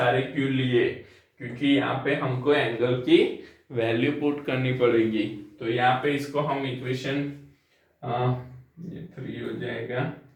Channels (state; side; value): identical; both; correlation 1.00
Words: क्यों लिए, क्योंकि यहाँ पे हमको एंगल की वैल्यू पुट करनी पड़ेगी। तो यहाँ पे इसको हम इक्वेशन ये 3 हो जाएगा,